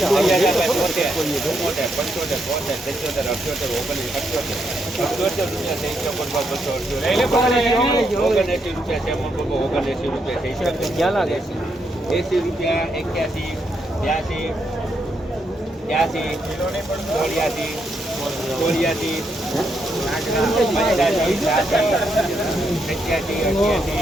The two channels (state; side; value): normal; both; correlation 0.79